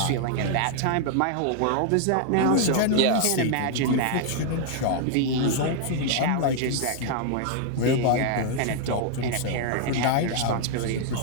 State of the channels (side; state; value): both; different; correlation 0.00